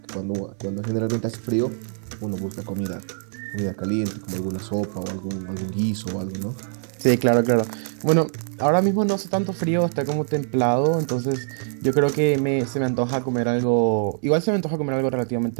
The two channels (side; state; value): left; silent; digital silence